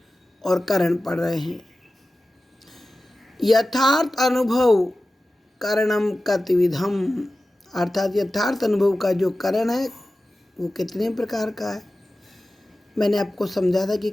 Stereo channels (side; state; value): both; normal; correlation 0.95